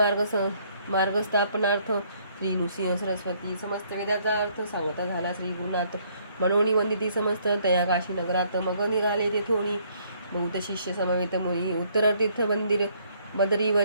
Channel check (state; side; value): inverted; both; correlation -0.66